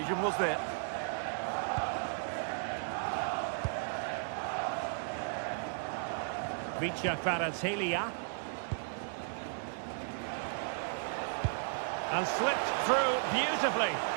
was there? Vicha Kvaratskhelia. And slipped through beautifully.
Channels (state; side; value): silent; left; digital silence